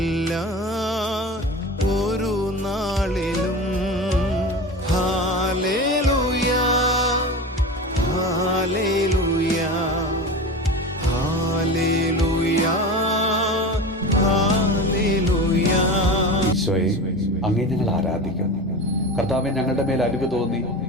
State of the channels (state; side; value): normal; both; correlation 0.29